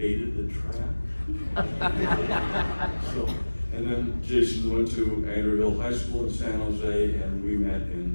the trap. So, and then Jason went to Andrew High School in San Jose, and we met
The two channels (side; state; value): both; inverted; correlation -1.00